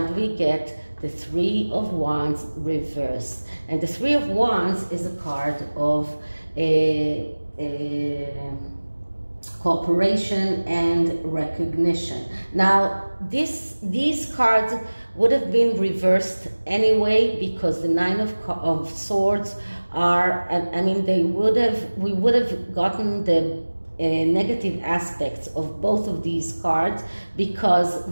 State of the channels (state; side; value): inverted; both; correlation -1.00